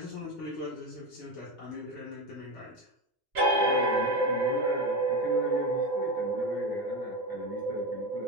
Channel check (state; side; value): normal; both; correlation 0.18